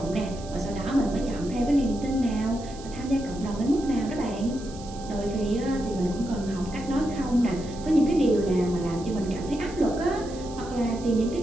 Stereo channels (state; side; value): noise; right; hiss, 18 dB below the sound